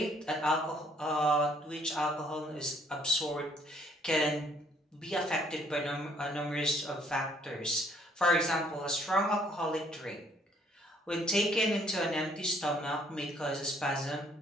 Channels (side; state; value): both; normal; correlation 0.64